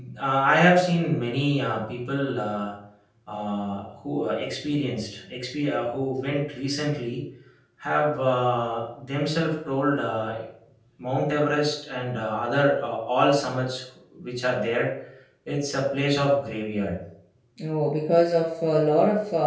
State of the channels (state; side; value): identical; both; correlation 1.00